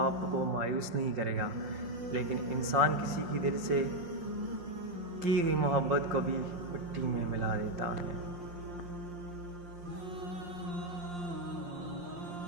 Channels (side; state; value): left; late; 5.7 ms